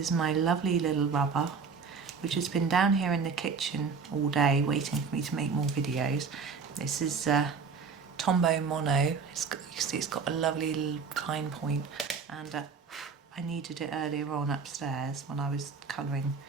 is my lovely little rubber, which has been down here in the kitchen all day waiting for me to make more videos. This is Tombow Tombow Mono. You can see it's got a lovely little fine point, and I needed it earlier on upstairs when I was colouring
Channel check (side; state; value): left; quieter; 5.4 dB